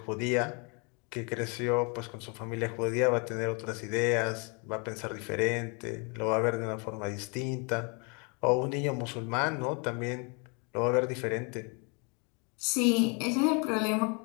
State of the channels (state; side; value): quieter; right; 33.8 dB